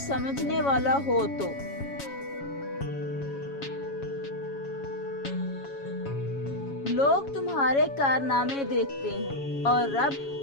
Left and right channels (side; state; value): right; late; 7.2 ms